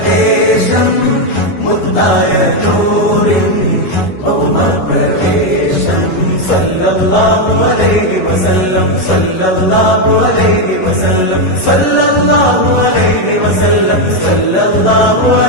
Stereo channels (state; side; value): late; right; 11 ms